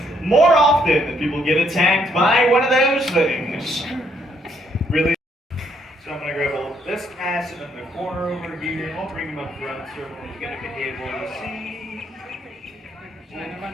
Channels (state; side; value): normal; both; correlation 0.71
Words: More often than people get attacked by one of those things. Really? So I'm going to grab a little this acid in the corner over here, and I'll bring him up front so everyone's going to be able to see. Come